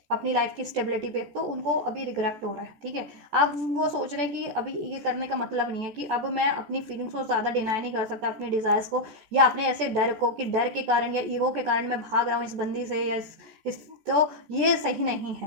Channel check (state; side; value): late; left; 14 ms